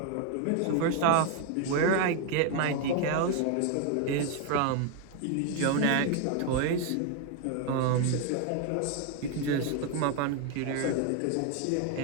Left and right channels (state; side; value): different; both; correlation 0.01